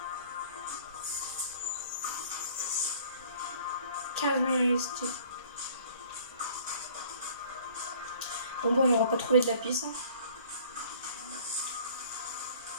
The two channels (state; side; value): inverted; both; correlation -0.53